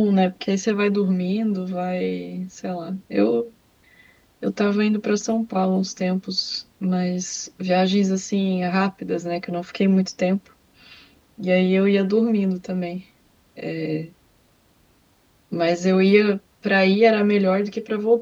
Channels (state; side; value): identical; both; correlation 1.00